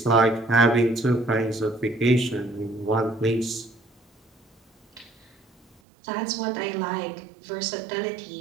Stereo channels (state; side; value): drops out; left; at 5.8 s